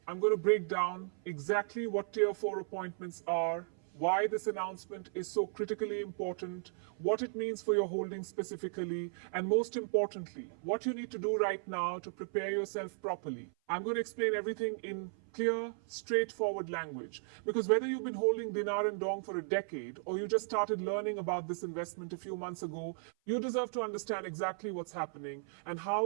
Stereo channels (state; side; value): silent; left; 54 dB below the other